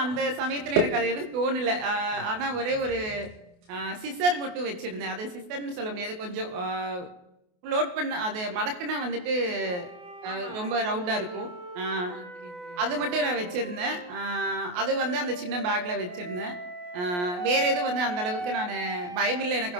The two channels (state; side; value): late; left; 28 ms